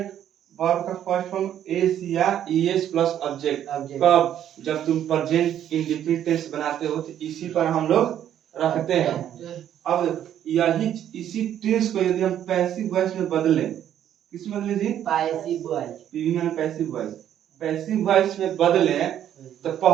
वर्ब का फर्स्ट फॉर्म एस या ईएस प्लस ऑब्जेक्ट। कब, जब तुम प्रेजेंट इंडेफिनिट टेंस बनाते हो तो इसी पर हम लोग रखते हैं। अब यही इसी टेंस को यदि हम पैसिव वॉइस में बदलें, किस में बदले जी, पैसिव वॉइस, पीवी में पैसिव वॉइस, पैसिव वॉइस में बदलें तो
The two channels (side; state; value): left; quieter; 10.6 dB